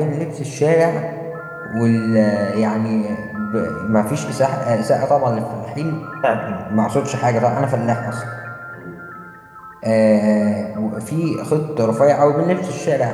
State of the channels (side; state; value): both; identical; correlation 1.00